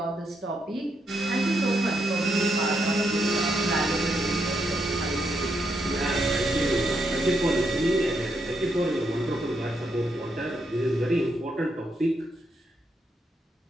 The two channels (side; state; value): both; normal; correlation 0.79